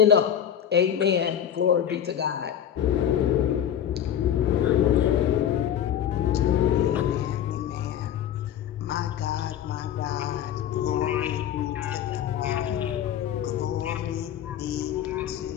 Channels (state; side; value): quieter; right; 9.7 dB